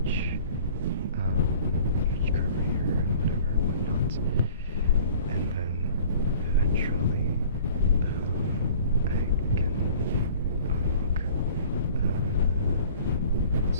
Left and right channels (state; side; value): inverted; both; correlation -0.49